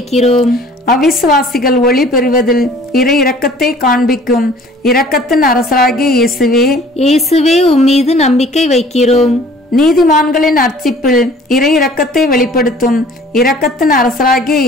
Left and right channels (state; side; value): normal; both; correlation 0.51